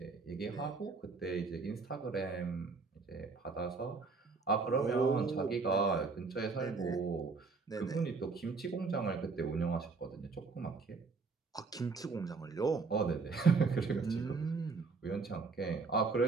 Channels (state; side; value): quieter; left; 4.4 dB